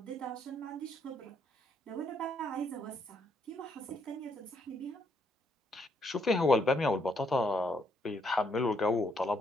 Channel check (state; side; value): normal; both; correlation 0.73